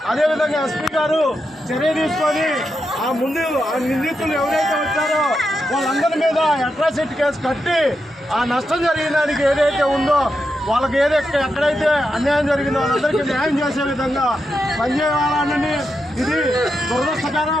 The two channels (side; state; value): both; normal; correlation 0.86